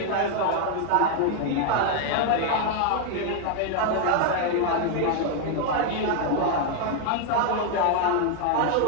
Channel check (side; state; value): both; different; correlation 0.00